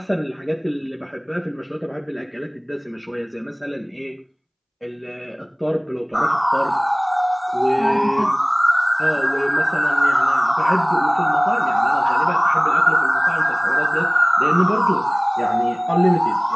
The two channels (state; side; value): identical; both; correlation 1.00